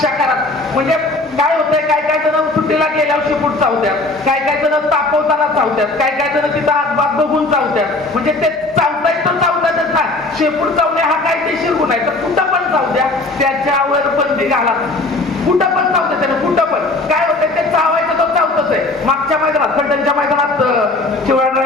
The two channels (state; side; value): quieter; right; 3.1 dB